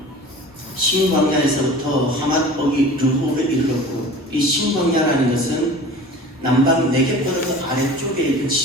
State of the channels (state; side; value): normal; both; correlation 0.40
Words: 신광야에서부터 하맛 어기 르홉에 이르렀고, 이 신광야라는 것은 남방 네겝바르 아래쪽에 있는